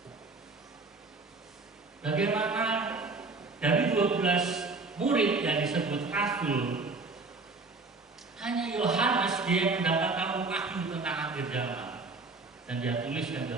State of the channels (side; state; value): left; quieter; 3.8 dB